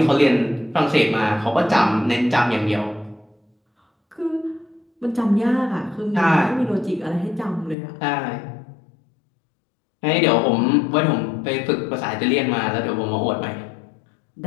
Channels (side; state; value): right; drops out; at 7.8 s